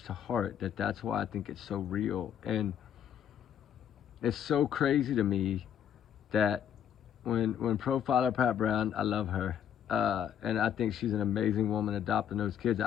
to heart that's why I think it's so real. And it's so crazy to me that when profiler Pat Brown, I love her, and I think she's an amazing woman adopting those kids.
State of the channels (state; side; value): quieter; right; 9.3 dB